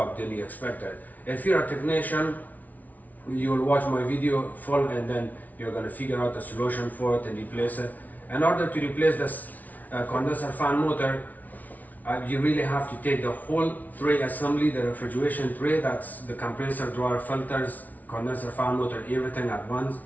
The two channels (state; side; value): late; right; 0.076 ms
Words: than you expected. If you're a technician, you will watch my video full, and then you're going to figure out a solution for it and replace it. In order to replace this condenser fan motor, you really have to take the whole tray assembly, the refrigeration tray, that's the compressor, dryer, filters, condenser fan motor, everything at once.